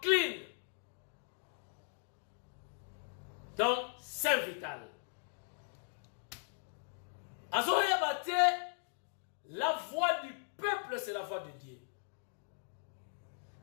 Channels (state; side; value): silent; right; digital silence